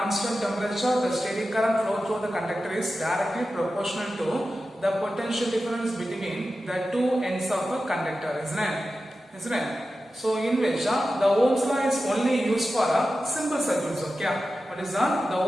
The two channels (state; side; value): normal; both; correlation 0.93